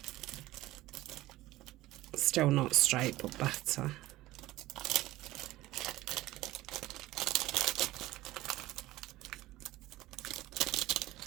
still not straight, but better.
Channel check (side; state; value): left; quieter; 17.1 dB